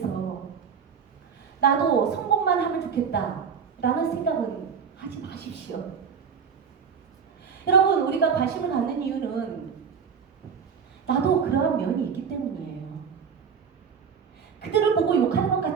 나도 성공만 하면 좋겠다 라는 생각은 하지 마십시오. 여러분, 우리가 관심을 갖는 이유는 나도 그러한 면이 있기 때문이에요. 그들을 보고 욕하는 것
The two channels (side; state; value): left; quieter; 6.6 dB